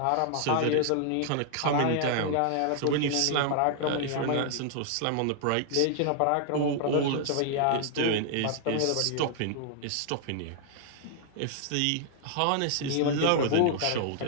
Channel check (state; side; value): different; both; correlation 0.00